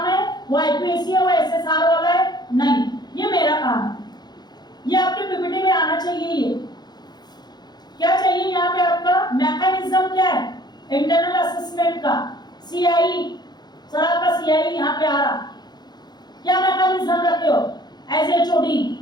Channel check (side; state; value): right; late; 0.20 ms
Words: है, वो आईपीएससी है, वो एसएसआर वाला है, नहीं, ये मेरा काम है। ये आपके पीपीटी में आना चाहिए। ये क्या चाहिए यहाँ पे? आपका मैकेनिज्म क्या है इंटरनल असेसमेंट का? सीआई, सर आपका सीआई यहाँ पे आ रहा, क्या मैकेनिज्म रखे हो एज एचओडी?